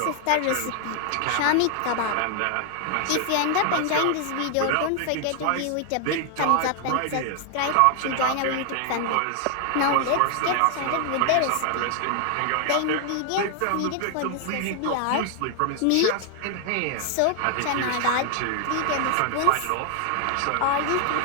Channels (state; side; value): different; both; correlation 0.00